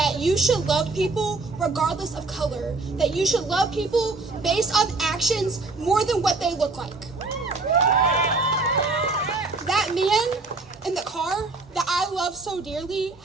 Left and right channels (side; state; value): left; quieter; 3.6 dB